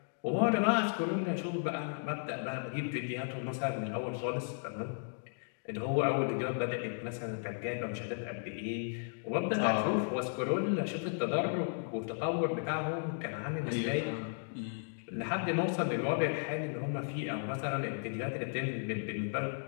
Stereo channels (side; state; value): right; silent; digital silence